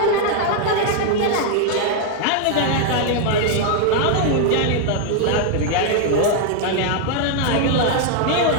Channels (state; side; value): different; both; correlation 0.00